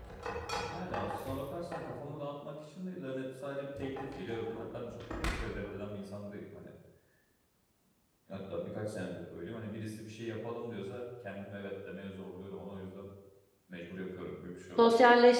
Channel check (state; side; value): identical; both; correlation 1.00